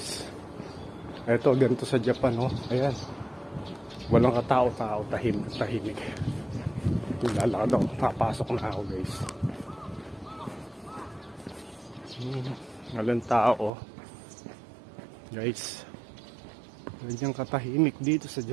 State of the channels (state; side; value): drops out; left; at 13.7 s